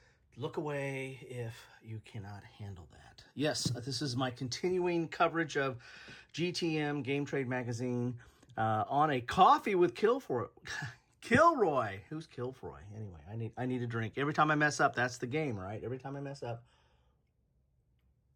look away if you cannot handle that. Yes, this is my continuing coverage of GTM Game Trade magazine on a coffee with Kilroy. Who's Kilroy? Anyway, I need a drink. Every time I mess up, that's the game, right? Every time I mess up,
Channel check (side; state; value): both; identical; correlation 1.00